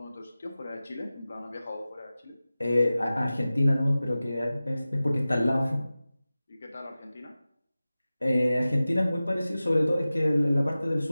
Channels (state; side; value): inverted; both; correlation -0.96